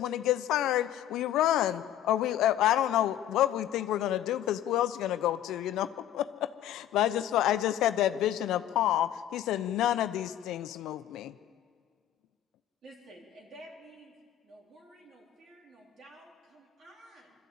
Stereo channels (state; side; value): quieter; right; 11.7 dB